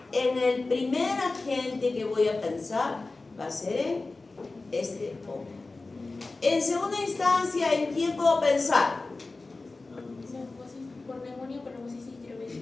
en el primer agente que voy a pensar va a ser en este hongo. En segunda instancia, ¿en quién puedo pensar? Por neumonía por neumocitis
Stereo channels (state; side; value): quieter; right; 3.5 dB